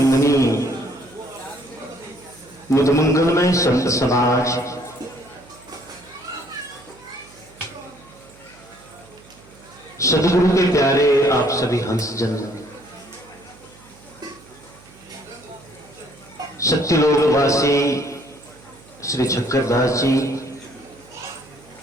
मुदमंगलमय संत समाज, सदगुरु के प्यारे आप सभी हंसजन, सत्यलोकवासी श्री चक्रदास जी,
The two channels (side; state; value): right; noise; hum, 25 dB below the sound